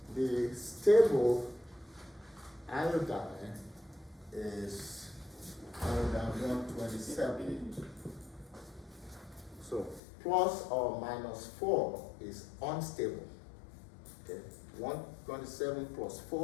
The stable iodine is iodine 127. So plus or minus 4 is unstable. Okay. 127 plus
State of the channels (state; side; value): drops out; right; at 10.0 s